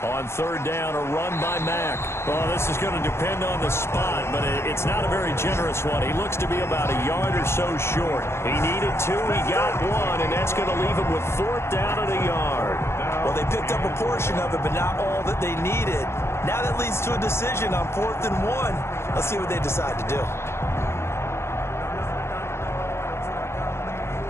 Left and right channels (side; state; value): right; late; 0.12 ms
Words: On third down, a run by Mack. Well, this is going to depend on the spot, but it's not a very generous one. He looks to be about a yard or so short. He needed 2, he got 1, and that's going to leave him with 4th down and a yard. Well, they picked up a portion of it, but not all that they needed. Now that leads to a decision on 4th and 1. Let's see what they decide to do.